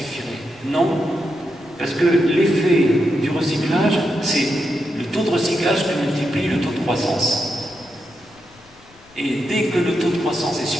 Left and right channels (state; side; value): noise; left; rumble, 29 dB below the sound